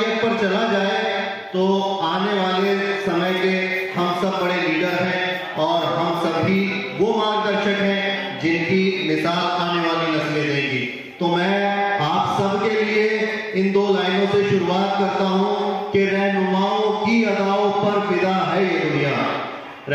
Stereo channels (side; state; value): both; identical; correlation 1.00